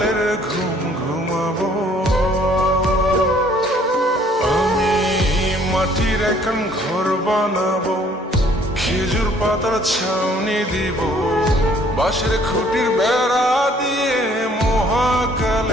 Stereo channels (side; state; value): both; normal; correlation 0.60